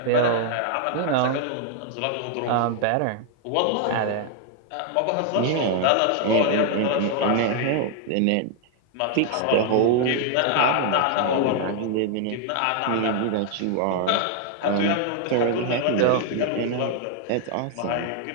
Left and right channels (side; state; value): both; different; correlation 0.00